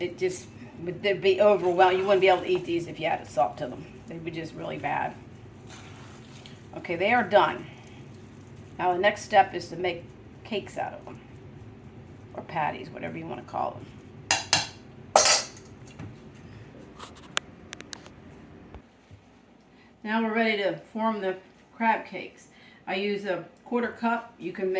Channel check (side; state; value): both; identical; correlation 1.00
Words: just would be overwhelming. You wouldn't be able to eat these if you added salt to them. They'd be just really bad. Okay, they are done. Now the next step is to make cakes out of them. Or patties, whatever you want to call them. Now we're ready to form the crab cakes. I use a 1/4 cup. You can